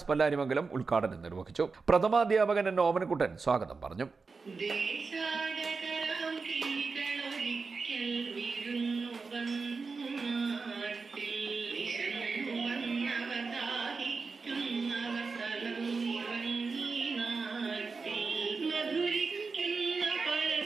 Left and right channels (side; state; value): left; quieter; 4.5 dB